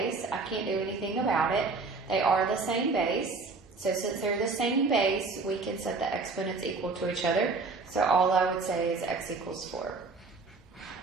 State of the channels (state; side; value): quieter; left; 4.1 dB